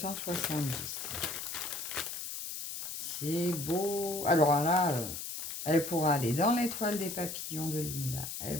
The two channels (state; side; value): noise; left; hiss, 6 dB below the sound